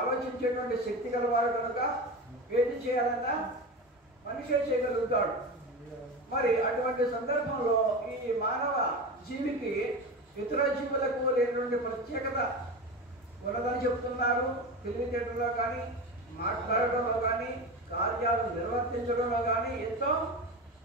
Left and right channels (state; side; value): normal; both; correlation 0.25